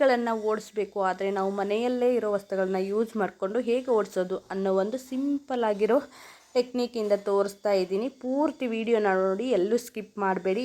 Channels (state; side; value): identical; both; correlation 1.00